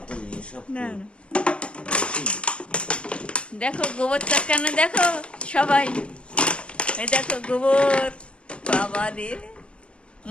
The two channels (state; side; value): late; right; 0.059 ms